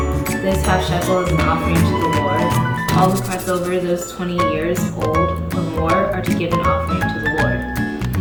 This half shekel is an offering to the Lord. All who cross over those 20 years old or more are to give an offering to the Lord.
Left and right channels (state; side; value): identical; both; correlation 1.00